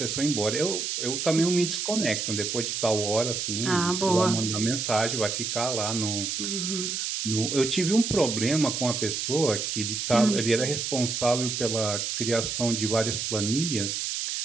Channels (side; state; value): right; noise; hiss, 2 dB below the sound